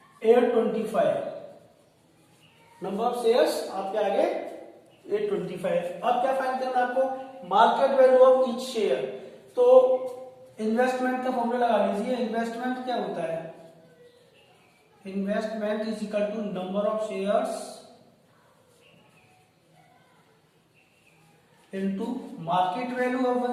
825। नंबर ऑफ शेयर्स आपके आ गए 825। अब क्या फाइंड करना है आपको, market value of each share. तो इन्वेस्टमेंट का फॉर्मूला लगा लीजिए। इन्वेस्टमेंट क्या होता है, investment is equal to number of shares into market value of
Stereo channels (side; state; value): both; identical; correlation 1.00